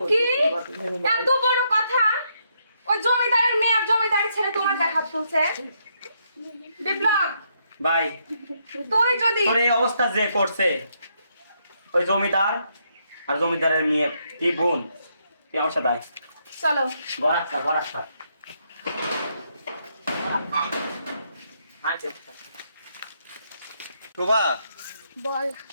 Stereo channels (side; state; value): both; inverted; correlation -0.76